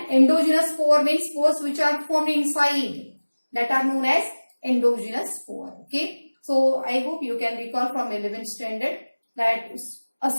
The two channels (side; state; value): both; inverted; correlation -1.00